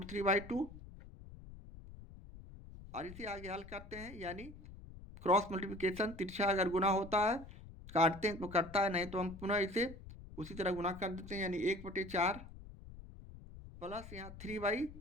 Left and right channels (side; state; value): left; noise; rumble, 15 dB below the sound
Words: और इसे आगे हल करते हैं, यानी क्रॉस मल्टीप्लिकेशन, तिरछा अगर गुना होता है काटते हैं तो कटता है, नहीं तो हम पुनः इसे उसी तरह गुना कर देते हैं, यानी 1/4 प्लस यहाँ